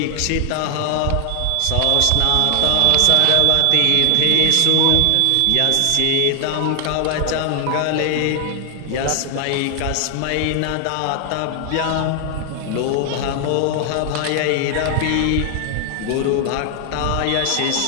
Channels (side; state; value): both; different; correlation 0.00